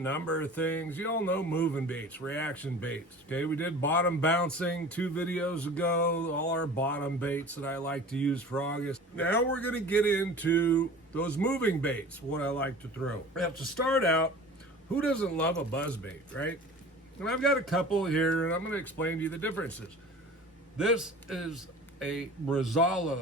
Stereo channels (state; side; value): normal; both; correlation 0.40